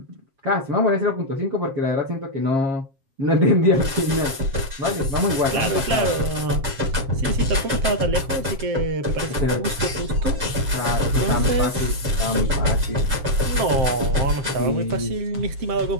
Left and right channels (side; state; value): left; late; 7.5 ms